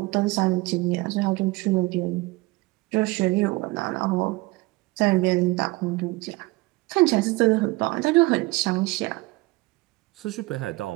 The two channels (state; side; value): quieter; left; 22.1 dB